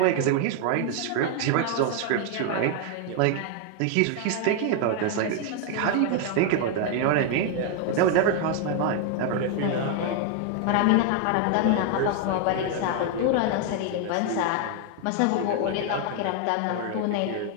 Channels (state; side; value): different; both; correlation 0.00